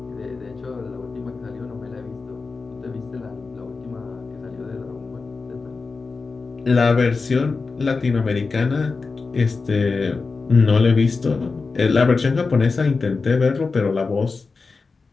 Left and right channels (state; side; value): quieter; right; 4.3 dB